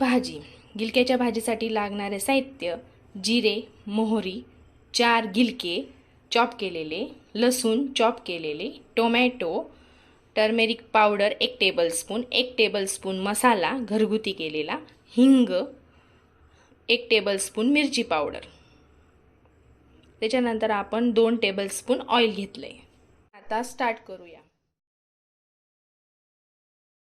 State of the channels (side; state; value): both; identical; correlation 1.00